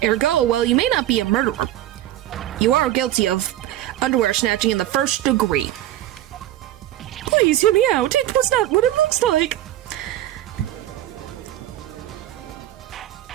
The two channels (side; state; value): left; quieter; 13.6 dB